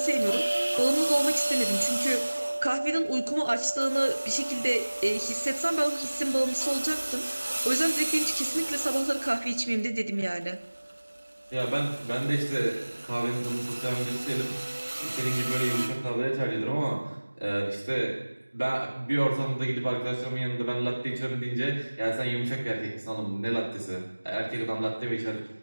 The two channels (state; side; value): inverted; both; correlation -1.00